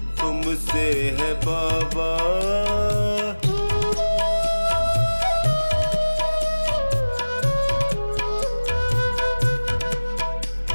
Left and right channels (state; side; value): inverted; both; correlation -1.00